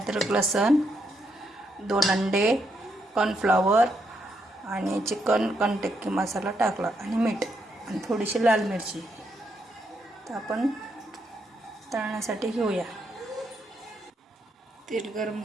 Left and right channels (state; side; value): normal; both; correlation 0.78